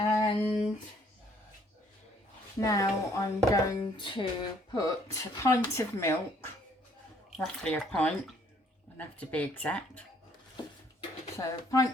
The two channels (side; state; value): both; normal; correlation 0.63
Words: now I'm going to put a pint of milk, roughly a pint, I don't have to be exact, so a